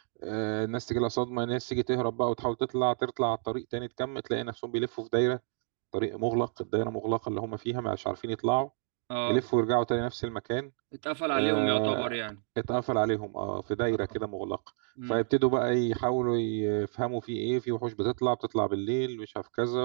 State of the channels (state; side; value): silent; left; digital silence